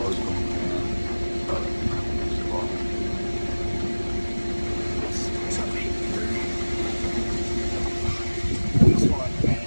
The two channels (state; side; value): inverted; both; correlation -1.00